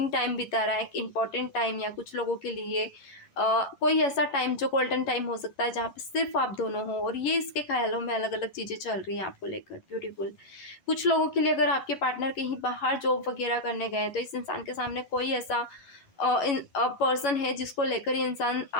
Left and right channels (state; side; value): late; right; 11 ms